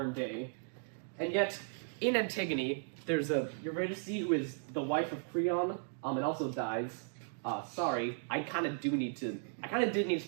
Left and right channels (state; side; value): silent; left; digital silence